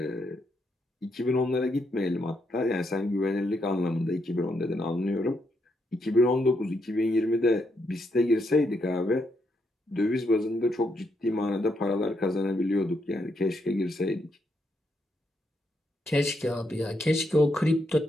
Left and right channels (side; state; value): both; normal; correlation 0.78